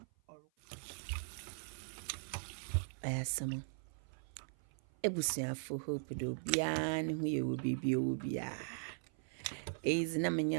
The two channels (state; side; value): silent; left; 51 dB below the other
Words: Ayasama. Ebusiafo hope do bia ne ho ye wo bibia wo bia. Is na